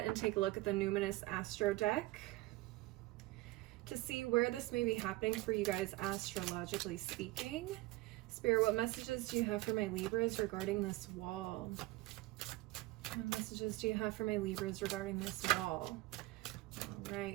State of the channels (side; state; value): left; quieter; 19.8 dB